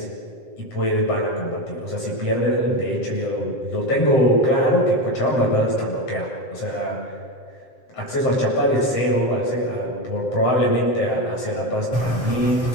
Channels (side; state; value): right; late; 7.7 ms